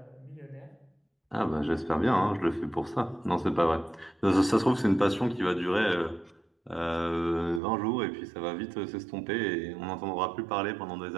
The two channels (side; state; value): left; drops out; at 7.6 s